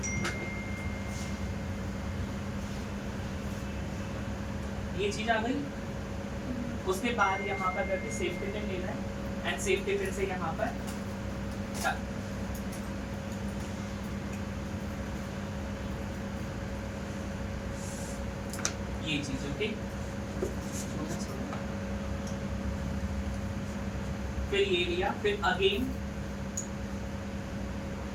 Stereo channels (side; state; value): both; identical; correlation 1.00